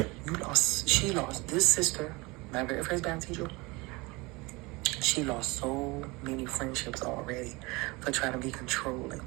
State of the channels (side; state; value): left; quieter; 24.4 dB